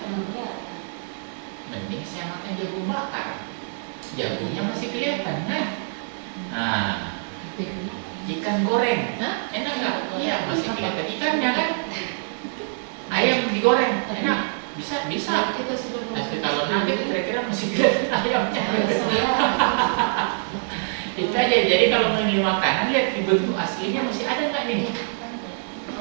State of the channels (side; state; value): left; silent; digital silence